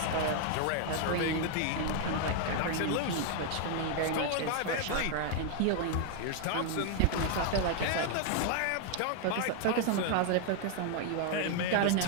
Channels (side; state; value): both; different; correlation 0.00